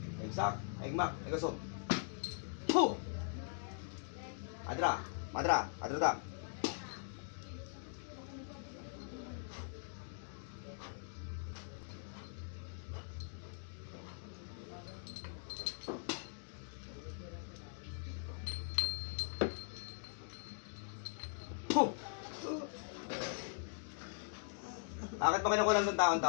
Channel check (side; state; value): right; silent; digital silence